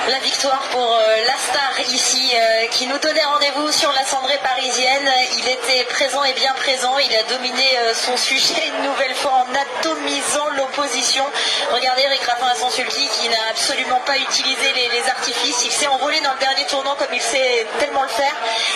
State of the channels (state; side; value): identical; both; correlation 1.00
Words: La victoire pour la star ici qui nous donnait rendez-vous sur la cendrée parisienne. Il était présent et bien présent. Il a dominé son sujet une nouvelle fois en atomisant l'opposition. Regardez Eric Raffin à son sulky qui n'a absolument pas utilisé les artifices. Il s'est envolé dans le dernier tournant comme il sait tellement le faire.